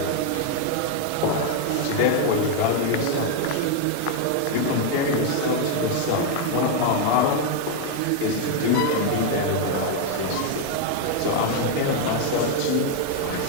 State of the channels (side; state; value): both; different; correlation 0.01